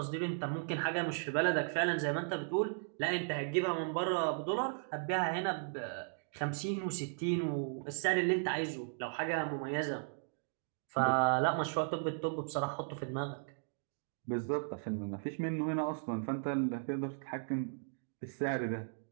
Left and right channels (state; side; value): silent; left; digital silence